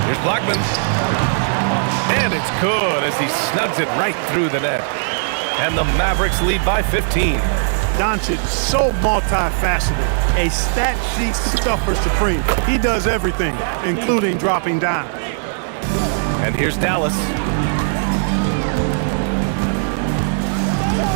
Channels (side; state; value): left; silent; digital silence